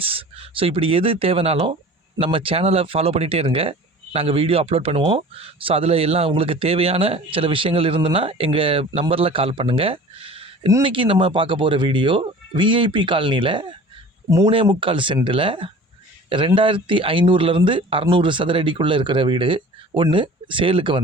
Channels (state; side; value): normal; both; correlation 0.42